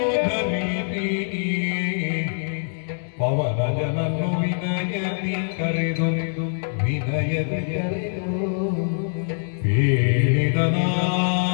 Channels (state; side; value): silent; right; digital silence